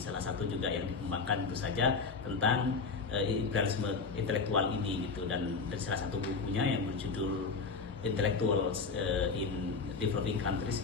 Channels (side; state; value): right; quieter; 4.7 dB